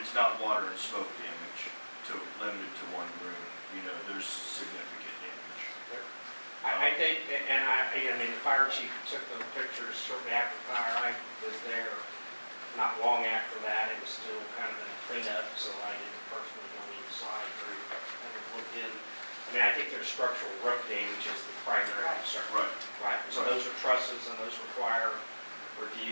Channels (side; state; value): both; inverted; correlation -1.00